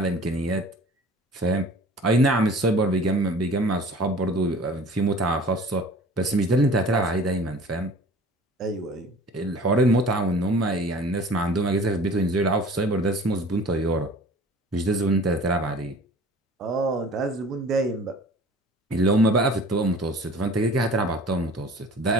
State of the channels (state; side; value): normal; both; correlation 0.45